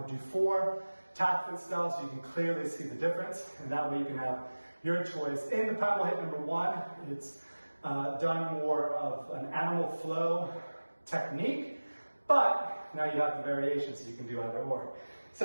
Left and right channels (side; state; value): both; inverted; correlation -1.00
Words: do 4 TACFIT style so you can clearly see the difference, and that way you can have your choice. In the Primal HIIT number 1, it's done more of an animal flow technique, but now you have the variation so you can do either or.